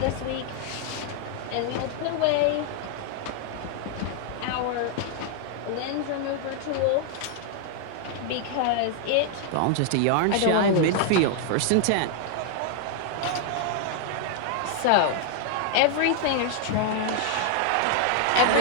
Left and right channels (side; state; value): both; different; correlation 0.00